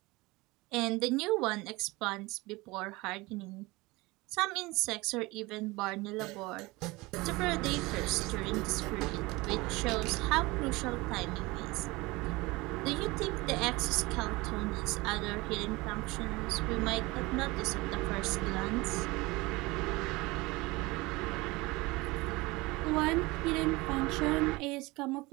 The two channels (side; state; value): left; quieter; 22.4 dB